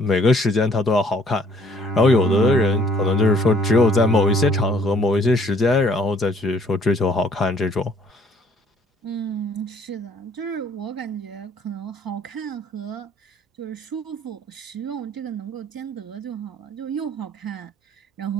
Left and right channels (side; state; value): both; normal; correlation 0.60